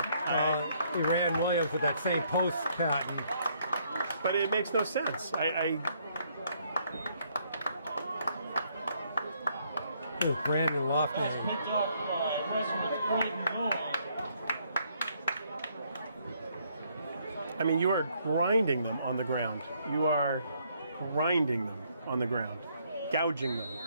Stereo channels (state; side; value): inverted; both; correlation -0.69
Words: He ran Williams with that same post pattern. But it makes no sense. Brandon Lofty. Picked off by Westwood, 3rd and goal. I mean, you are grinding them on the ground. You are grinding them on the ground. Gouging them